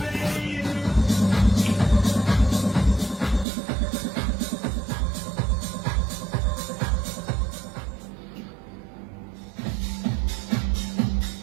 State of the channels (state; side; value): drops out; left; at 3.5 s